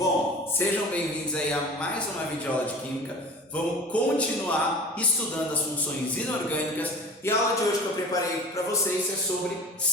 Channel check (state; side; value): normal; both; correlation 0.39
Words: sejam bem-vindos aí a mais uma videoaula de Química. Vamos continuar estudando as funções inorgânicas e a aula de hoje que eu preparei para vocês é sobre